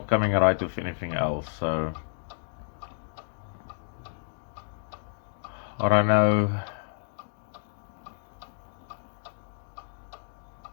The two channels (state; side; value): silent; right; digital silence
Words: coming right with anything else, so I don't know.